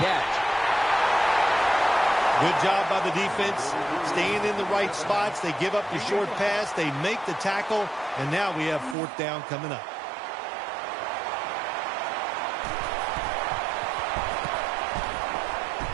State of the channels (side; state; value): left; drops out; at 9.0 s